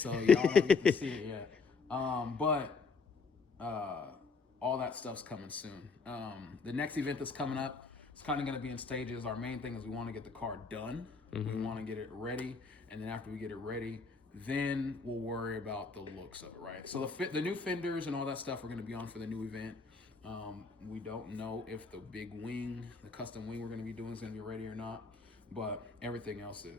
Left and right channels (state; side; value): quieter; right; 4.4 dB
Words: y'all don't get to see it yet. But all that stuff's coming soon. The next event that's coming up, it's kind of going to be in stages. Our main thing is we want to get the car done. We want to get it ready, and then after we get it ready, then we'll worry about the looks of it, right? So the new fenders and all that stuff are going to be on for the new event. We don't know if the big wing, the custom wing we're going to be doing is going to be ready or not, but everything else